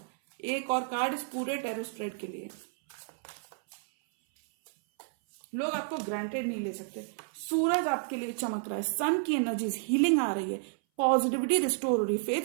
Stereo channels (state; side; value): silent; left; 57 dB below the other